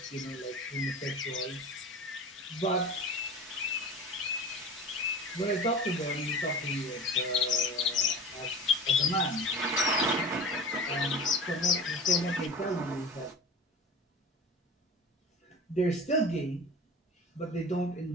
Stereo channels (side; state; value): both; normal; correlation 0.36